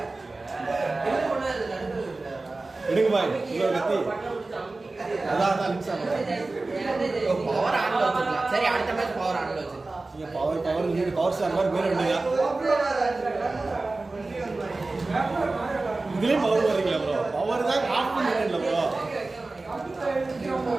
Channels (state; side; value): quieter; left; 3.3 dB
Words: எடுங்க பாய். இவ்வளவு கத்தி. அதான் லிங்க்ஸ் யோ பவர் ஆன்ல வச்சிருக்கலாம். சரி அடுத்த மேட்ச் பவர் ஆன்ல வச்சிரு. நீங்க பவர் நீங்க பவர் ஸ்டார் மாதிரி பேர் எடுங்க. இதுலயும் பவர் வரீங்களா ப்ரோ? பவர் தான் ஆஃப் பண்ணிட்டீங்களா ப்ரோ? ஐயோ